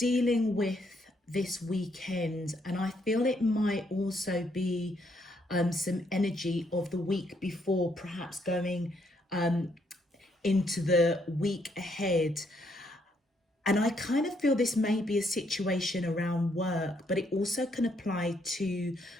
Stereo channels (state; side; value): normal; both; correlation 0.73